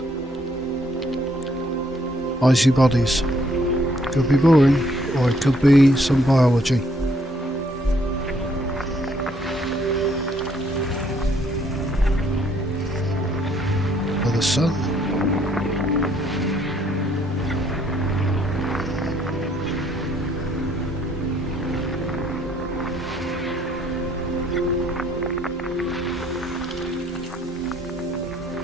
icy bodies. Could be boring, or it could be some biology. For the sun.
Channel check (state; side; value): normal; both; correlation 0.67